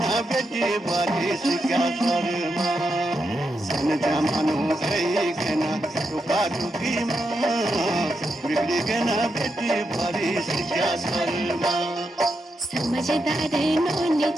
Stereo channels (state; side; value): normal; both; correlation 0.85